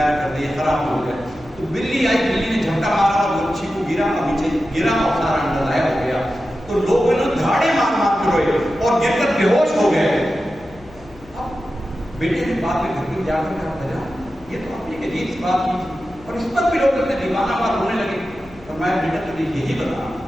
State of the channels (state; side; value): noise; left; hum, 23 dB below the sound